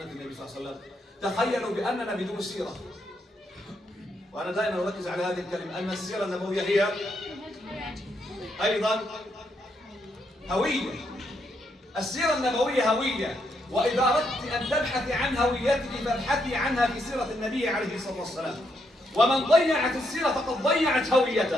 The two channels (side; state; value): both; normal; correlation 0.78